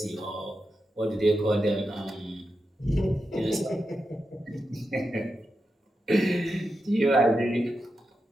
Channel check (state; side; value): normal; both; correlation 0.88